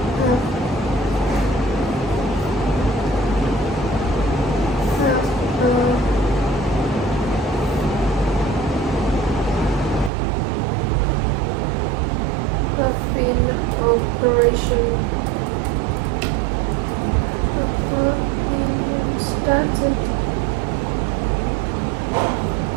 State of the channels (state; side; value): drops out; left; at 10.1 s